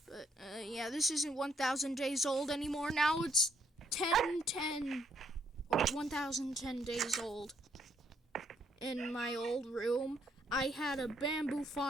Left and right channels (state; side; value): normal; both; correlation 0.72